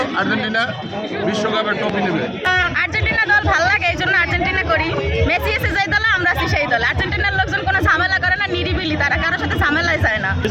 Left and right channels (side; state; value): both; identical; correlation 1.00